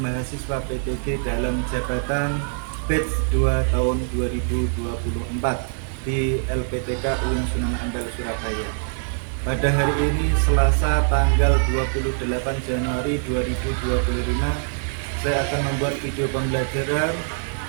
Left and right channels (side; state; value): left; silent; 63 dB below the other